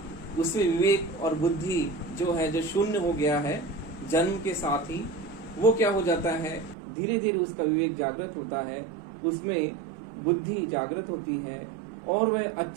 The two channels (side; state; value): left; drops out; at 6.8 s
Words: उसमें विवेक और बुद्धि जो है, जो शून्य हो गया है जन्म के साथ ही, वो क्या हो जाता है, धीरे धीरे उसका विवेक जागृत होता है, उसमें बुद्धि जागृत होती है, और वह